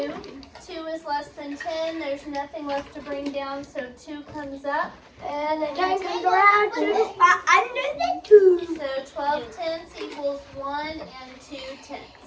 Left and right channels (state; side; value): identical; both; correlation 1.00